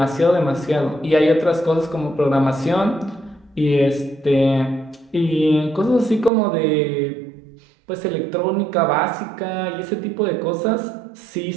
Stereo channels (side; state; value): left; drops out; at 6.3 s